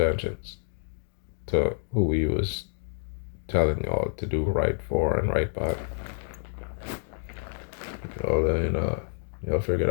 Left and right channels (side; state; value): right; silent; digital silence